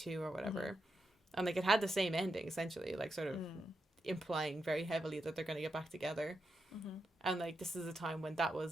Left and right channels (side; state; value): both; normal; correlation 0.86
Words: or whatever, and, like, it had the same ending, essentially, like, sort of implying very heavily that they're gonna get back together. And like this is a time when that